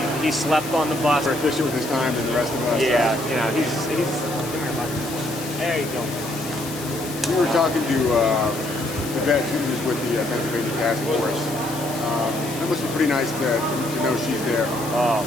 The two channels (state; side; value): noise; left; hiss, 11 dB below the sound